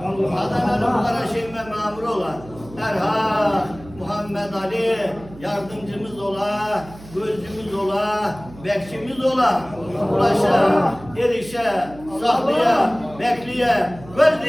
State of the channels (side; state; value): right; noise; hum, 18 dB below the sound